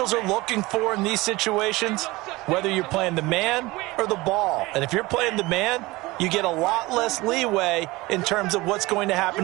are looking for in these situations, whether you're playing the man or the ball. And if you're playing the man, you get a lot less leeway in terms of what's going to happen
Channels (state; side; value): quieter; left; 21.0 dB